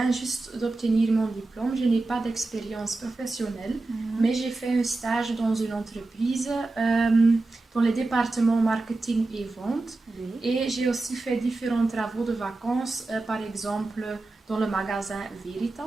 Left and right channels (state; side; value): quieter; left; 3.2 dB